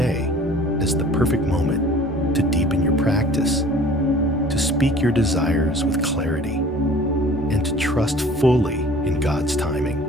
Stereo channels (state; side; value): normal; both; correlation 0.47